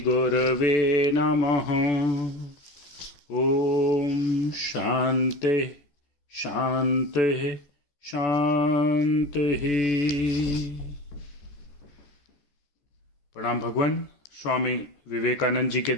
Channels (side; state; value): right; late; 14 ms